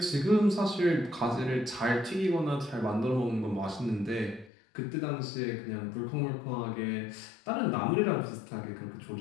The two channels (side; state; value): right; drops out; at 4.5 s